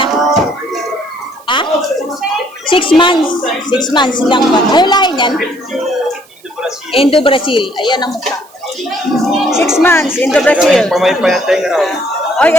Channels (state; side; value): noise; right; hiss, 27 dB below the sound